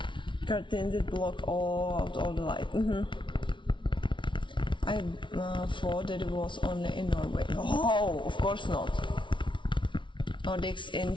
Curtains that block all the light. I thought that it was only in Norway. Oh, of course not. Nordics in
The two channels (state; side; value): late; right; 0.24 ms